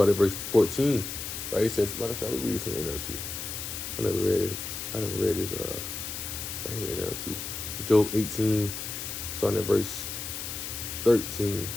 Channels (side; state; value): left; noise; hiss, 6 dB below the sound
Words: at verse 14. Right? It says, matter of fact, we read this in the NLT. I never read this right here in NLT. Job 18, starting at verse 13.